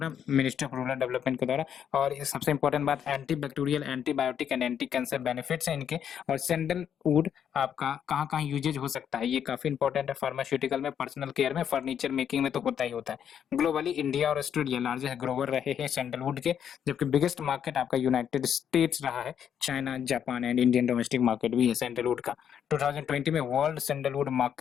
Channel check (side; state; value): right; quieter; 8.7 dB